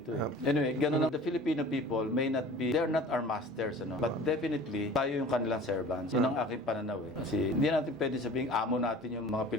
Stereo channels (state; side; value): normal; both; correlation 0.43